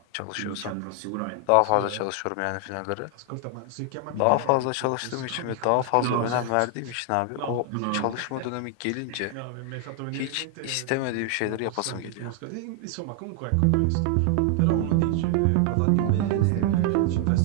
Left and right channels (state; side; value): different; both; correlation 0.00